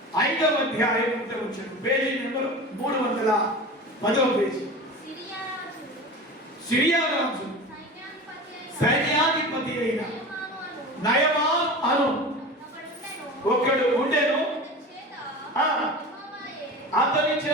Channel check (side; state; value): both; normal; correlation 0.32